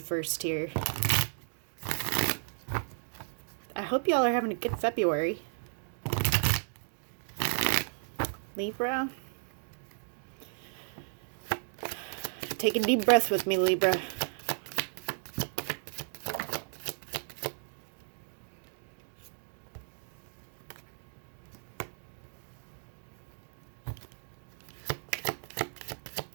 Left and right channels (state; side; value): silent; left; digital silence